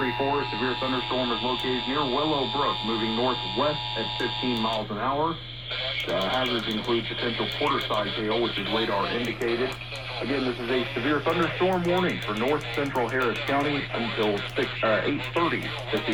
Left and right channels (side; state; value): both; identical; correlation 1.00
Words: a severe thunderstorm is located near Willow Brook, moving northwest at 15 miles an hour. Hazards include potential quarter-size hail, which is radar indicated. Again, this is a severe thunderstorm warning for north central Harris County until 8:30 this